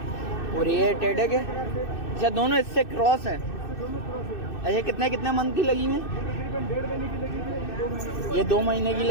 और ये टेढ़े के? अच्छा, दोनों इससे क्रॉस है। अच्छा, कितने मंथ की लगी हुई है? ये 2 महीने की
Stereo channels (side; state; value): right; late; 2.6 ms